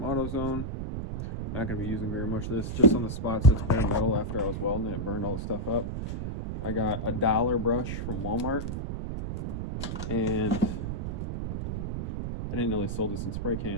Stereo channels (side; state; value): right; noise; rumble, 4 dB below the sound